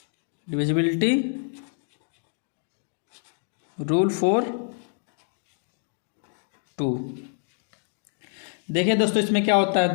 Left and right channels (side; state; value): right; silent; 60 dB below the other